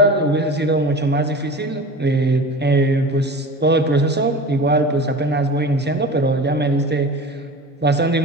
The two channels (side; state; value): both; normal; correlation 0.34